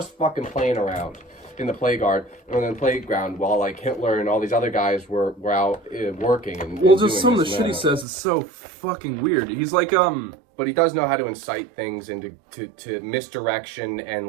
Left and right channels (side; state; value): left; drops out; at 8.1 s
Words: fucking playing around in the playground while, like, Hitler and all these other guys were out working and just some of the shit he says is so fucking weird. He's like But he does know how to incite things into to misdirection and,